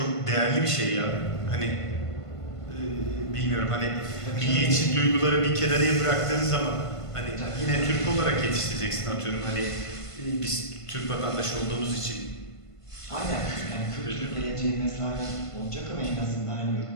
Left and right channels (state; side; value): late; right; 1.5 ms